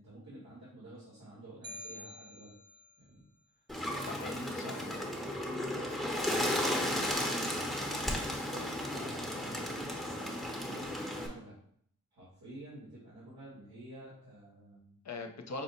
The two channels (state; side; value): normal; both; correlation 0.59